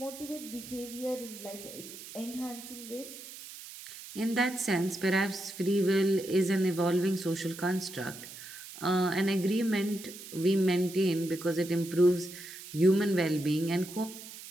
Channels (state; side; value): noise; right; hiss, 14 dB below the sound